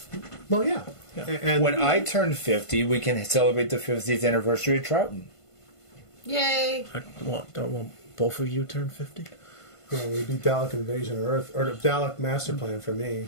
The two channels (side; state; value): right; late; 1.5 ms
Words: Well, yeah. Yeah. And When I turn 50, we can celebrate the 50th anniversary of Troughton. Yay! Don't want both of you turn 50? it would be Dalek Invasion of Earth, or the Dalek Master Plan for me.